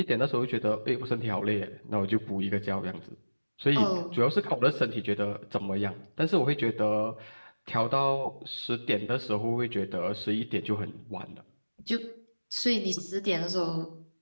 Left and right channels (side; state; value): both; inverted; correlation -1.00